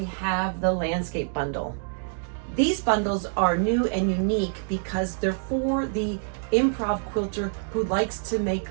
have the landscape bundle. These bundles are new and unique because they're for the improv quilter who likes to make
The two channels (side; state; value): left; silent; digital silence